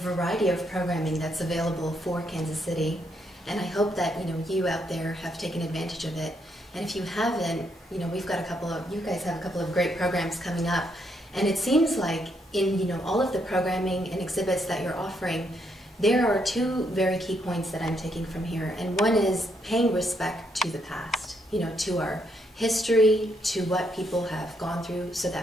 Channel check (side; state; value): both; normal; correlation 0.75